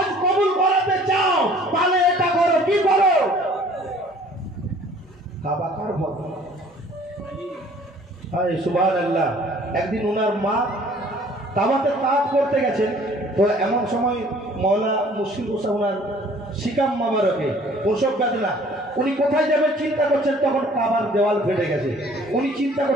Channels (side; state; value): both; normal; correlation 0.53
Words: কবুল করাতে চাও তাহলে এটা করো, কি করো? কাবা কার হজ। হায় সুবহানাল্লাহ। একদিন ওনার মা কাবাতে তাওয়াফ করতে গেছেন, তো এমন সময় মওলা মুশকিল কোসা ওনার শিকাম মাবারকে প্রসব বেদনা, উনি কোথায় যাবেন চিন্তা করছেন, তখন কাবার দেওয়াল ফেটে গেছে। উনি চিন্তা